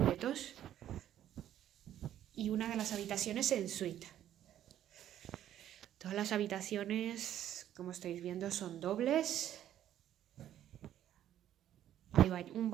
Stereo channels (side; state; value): left; quieter; 11.5 dB